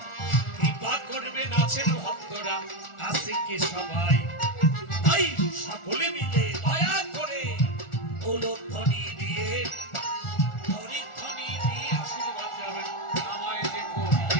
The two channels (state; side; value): late; right; 1.4 ms